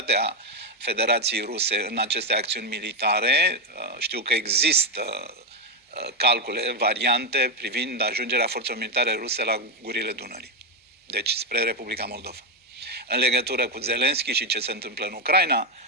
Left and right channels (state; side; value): normal; both; correlation 0.07